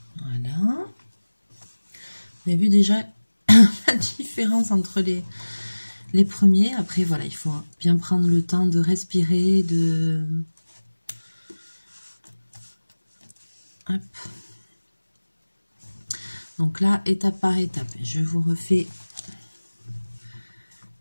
Voilà. Vous avez vu déjà la différence entre les premiers. Après, voilà, il faut bien prendre le temps de respirer, de... Hop. Donc là, étape par étape, je vous refais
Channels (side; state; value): both; inverted; correlation -1.00